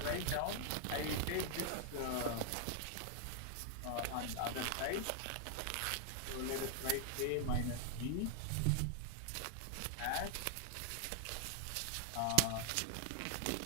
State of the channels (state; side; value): different; both; correlation 0.00